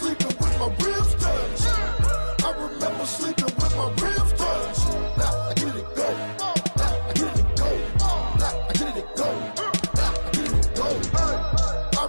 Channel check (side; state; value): both; inverted; correlation -1.00